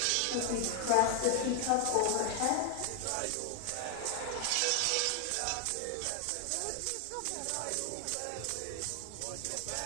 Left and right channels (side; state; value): both; different; correlation 0.00